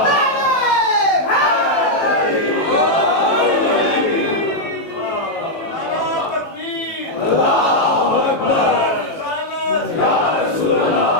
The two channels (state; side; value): late; right; 18 ms